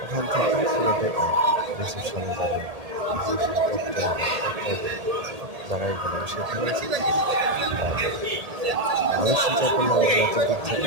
ওখান থেকে পুরোটাই রিসেপশনে যাবে, রিসেপশন দপ্তরে জায়গায় গেলাম, সেখানে আমি চিন্তা করলাম যে এত দূর থেকে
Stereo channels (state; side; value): late; left; 1.8 ms